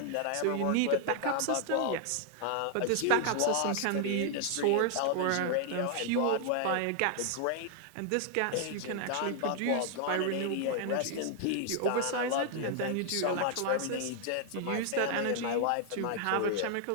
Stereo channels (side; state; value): both; different; correlation 0.00